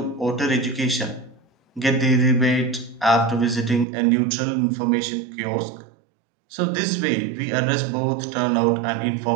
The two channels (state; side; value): drops out; left; at 3.9 s